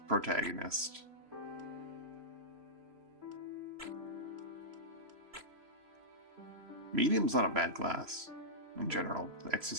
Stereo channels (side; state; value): left; late; 3.0 ms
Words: protagonist. Medium's not a bad class in general.